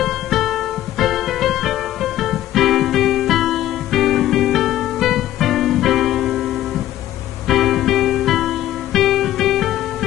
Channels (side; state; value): right; quieter; 13.5 dB